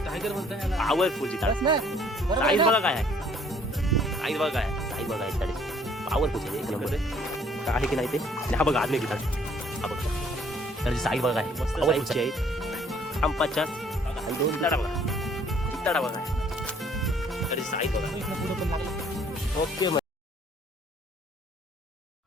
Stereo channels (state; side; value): normal; both; correlation 0.60